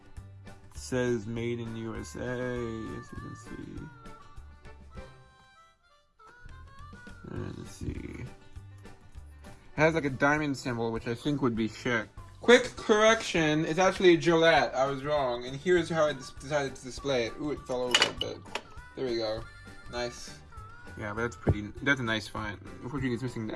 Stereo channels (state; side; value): identical; both; correlation 1.00